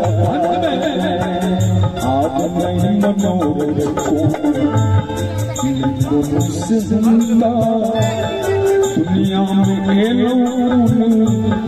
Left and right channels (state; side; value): identical; both; correlation 1.00